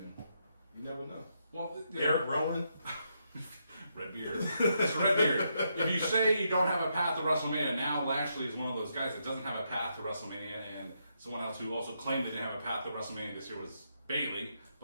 you never know. Well, Eric Rowan, Redbeard, Mr. Redbeard. If you say you don't have a path to WrestleMania, now Lashley is one of those guys that doesn't have a path to WrestleMania, and someone else who also claimed they didn't have a path to WrestleMania this year was Bayley.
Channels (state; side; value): inverted; both; correlation -0.79